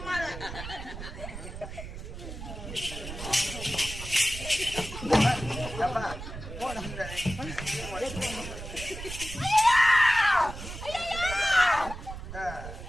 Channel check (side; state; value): right; noise; rumble, 10 dB below the sound